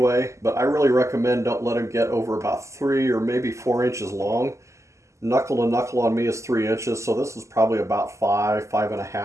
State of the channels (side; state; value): left; late; 0.14 ms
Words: but I really recommend don't let them get over about 3 or maybe 4 inches long. Knuckle to knuckle on me is 3 inches, so this is probably about